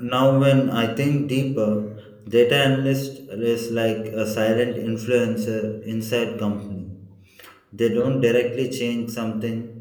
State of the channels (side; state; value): both; identical; correlation 1.00